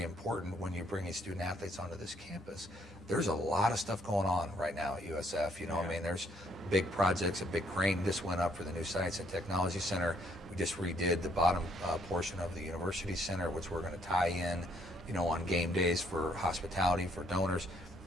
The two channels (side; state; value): both; normal; correlation 0.67